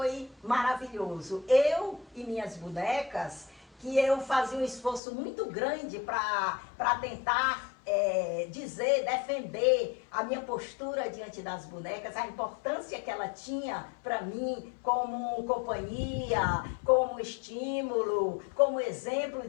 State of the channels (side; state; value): right; drops out; at 5.0 s